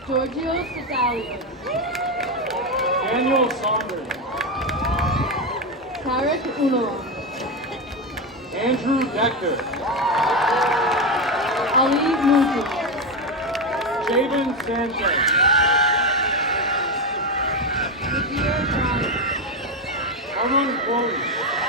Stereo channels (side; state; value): both; normal; correlation 0.12